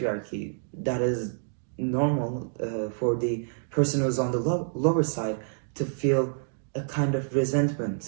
That is normal for the person who's on the lower side to feel a kind of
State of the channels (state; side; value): silent; left; digital silence